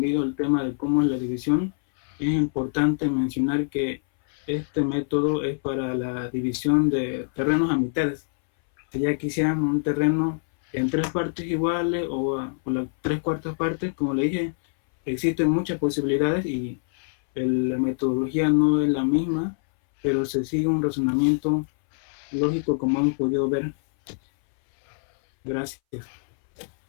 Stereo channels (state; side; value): silent; right; 61 dB below the other